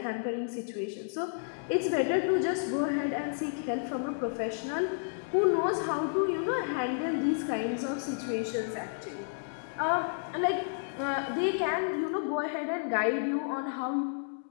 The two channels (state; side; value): silent; right; digital silence